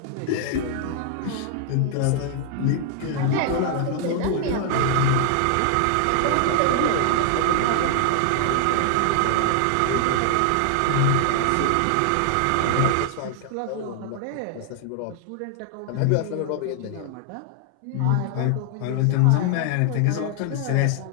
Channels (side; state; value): both; different; correlation 0.00